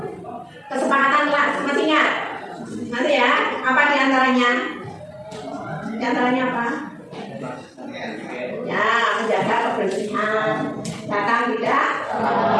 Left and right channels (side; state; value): both; identical; correlation 1.00